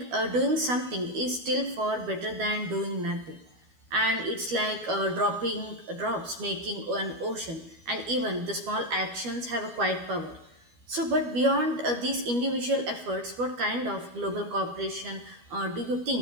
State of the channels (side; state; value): left; late; 12 ms